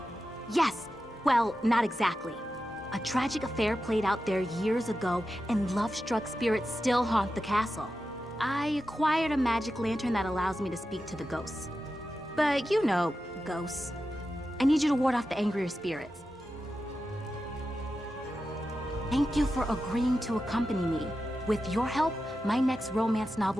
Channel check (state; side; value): normal; both; correlation 0.91